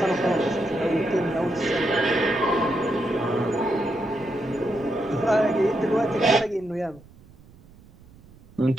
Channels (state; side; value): noise; right; rumble, 25 dB below the sound